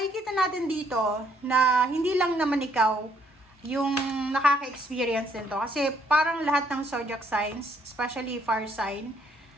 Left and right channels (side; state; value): both; normal; correlation 0.68